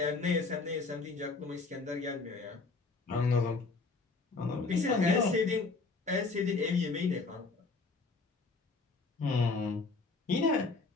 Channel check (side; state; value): right; quieter; 3.9 dB